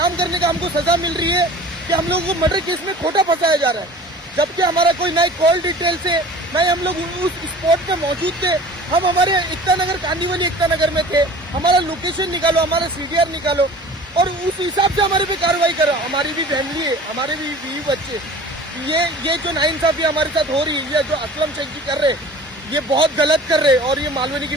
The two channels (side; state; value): both; normal; correlation 0.43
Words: करने का हमको सजा मिल रही है कि हम लोगों को मर्डर केस में खोटा फंसाया जा रहा है। जबकि हमारा कोई ना कॉल डिटेल से, ना ही हम लोग उस स्पॉट पे मौजूद थे। हम हमारे एकता नगर, कांदीवली एकता नगर में थे। हमारा लोकेशन निकालो, हमारा सीडीआर निकालो और उस हिसाब से हमारे पे कार्रवाई करो। हमारी भी फैमिली है, हमारे भी बीवी बच्चे। ये जो नाइंसाफी हमारे साथ हो रही है, ये जो असलम शेख जी कर रहे हैं, ये बहुत गलत कर रहे हैं और ये मालवनी की